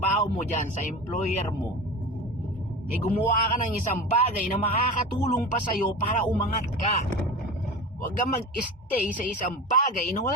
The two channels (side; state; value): both; normal; correlation 0.30